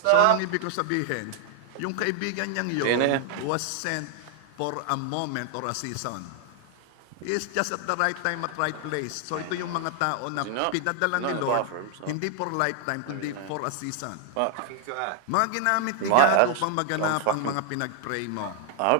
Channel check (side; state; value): both; different; correlation 0.00